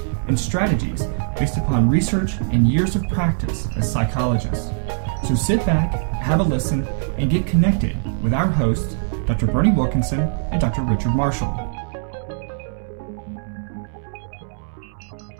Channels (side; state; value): left; silent; 65 dB below the other